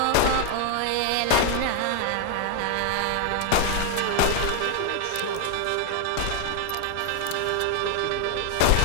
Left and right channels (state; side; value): different; both; correlation 0.00